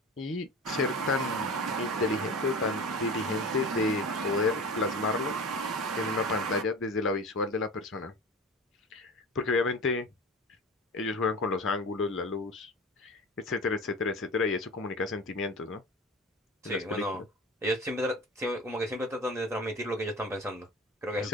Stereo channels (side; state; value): both; normal; correlation 0.34